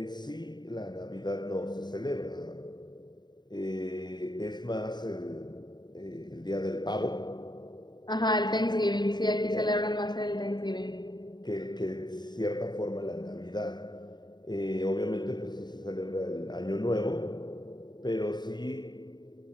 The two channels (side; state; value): right; late; 0.21 ms